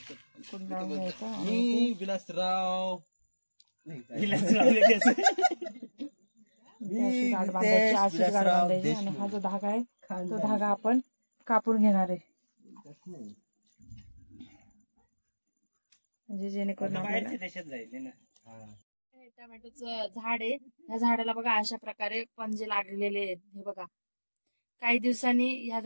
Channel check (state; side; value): inverted; both; correlation -1.00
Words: कुंडाळून घ्यायचं आणि विलासराव इथे अशी गाठ बांधायची, अशीच गाठ बांधायची आणि हा जो धागा आहे तो धागा आपण कापून घेणार आहे, म्हणजे जेणेकरून आपल्याला देशात जायचे ना. टोमॅटोचं झाड आहे. या झाडाला बघा अशा प्रकारे पंजे लागलेले आहेत. हे बघा काही दिवसांनी या